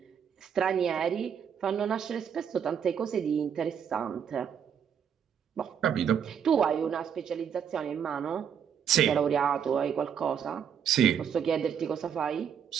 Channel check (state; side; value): quieter; left; 7.9 dB